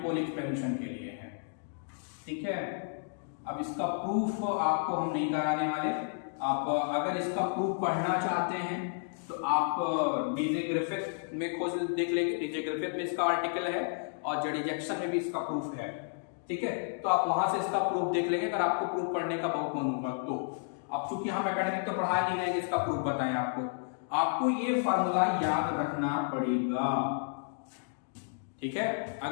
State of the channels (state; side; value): silent; right; digital silence